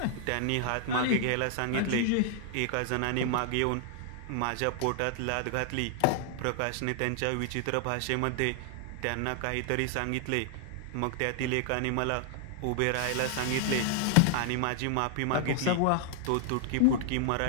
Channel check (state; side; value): different; both; correlation 0.00